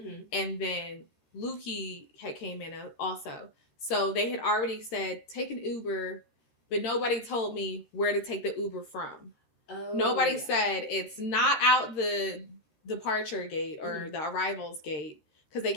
and then Lukey had came in also. So they had already said take an Uber, but nobody told me where to take the Uber from. Oh, nobody said it's not out the departure gate or the arrivals gate because they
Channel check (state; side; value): late; right; 13 ms